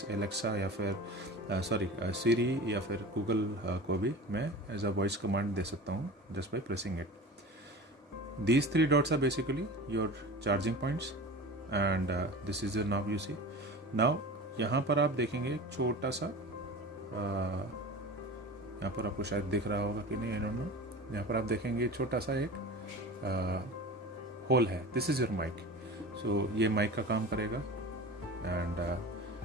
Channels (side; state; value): both; normal; correlation 0.34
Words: एलेक्सा या फिर सीरी या फिर गूगल को भी मैं एज अ वॉइस कमांड दे सकता हूँ just by pressing it. These 3 dots are basically your charging points, and this is your now you see. Now यहाँ पर आप देखेंगे एक छोटा सा, यहाँ पर आपको शायद दिख रहा होगा कि नहीं, आई डोंट नो। यहाँ पर आप देखेंगे छोटा सा एक होल है, दिस इज योर माइक। सो ये माइक का काम करेगा, and